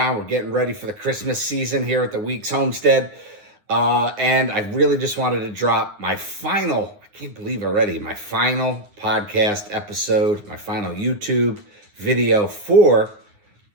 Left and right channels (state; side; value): late; left; 9.7 ms